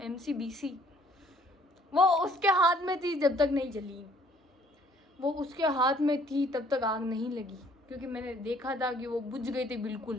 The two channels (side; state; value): both; normal; correlation 0.60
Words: MCBC वो उसके हाथ में थी जब तक नहीं जली, वो उसके हाथ में थी तब तक आग नहीं लगी, क्योंकि मैंने देखा था कि वो बुझ गई थी